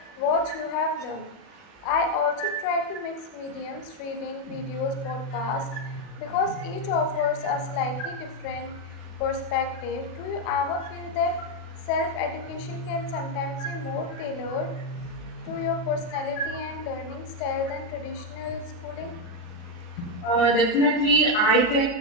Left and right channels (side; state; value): right; late; 40 ms